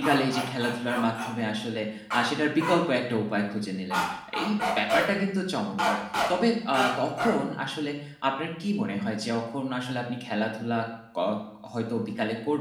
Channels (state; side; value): identical; both; correlation 1.00